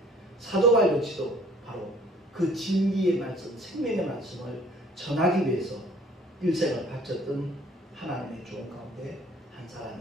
사도 바울 역시도 바로 그 진리의 말씀, 생명의 말씀을 전하기 위해서 일생을 바쳤던 하나님의 종 가운데 한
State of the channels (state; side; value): normal; both; correlation 0.56